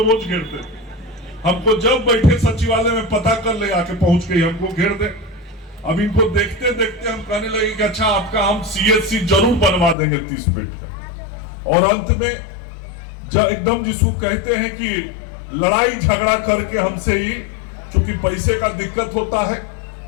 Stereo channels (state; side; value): drops out; right; at 10.0 s